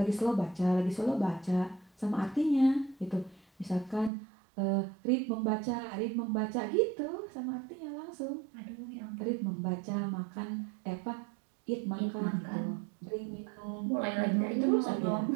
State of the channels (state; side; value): drops out; left; at 4.1 s